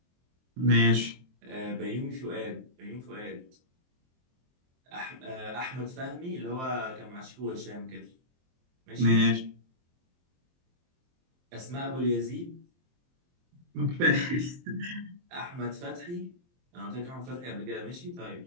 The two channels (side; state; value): left; late; 23 ms